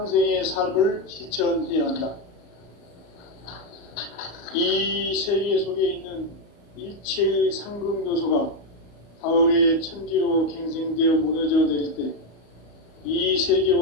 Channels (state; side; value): late; right; 34 ms